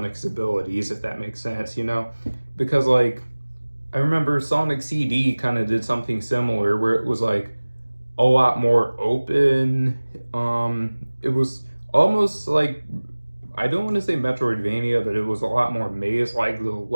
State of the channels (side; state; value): both; inverted; correlation -1.00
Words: abilities, if that makes sense, because I remember Sonic CD kind of did something similar where it was a lot more open. It was almost I don't want to say Metroidvania, but it was a lot more maze. The